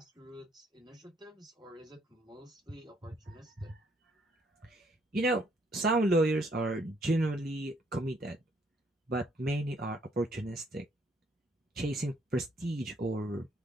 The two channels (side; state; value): both; normal; correlation 0.68